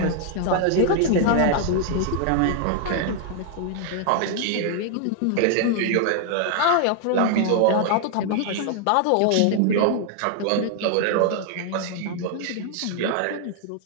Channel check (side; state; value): both; different; correlation 0.00